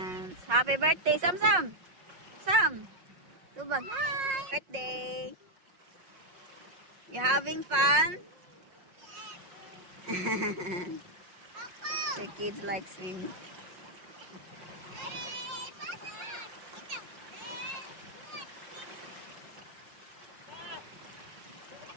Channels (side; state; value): left; late; 5.5 ms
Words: Happy birthday, Sam Sam. Sam. Tubag. Hi. Birthday. You having fun? The kids like swimming.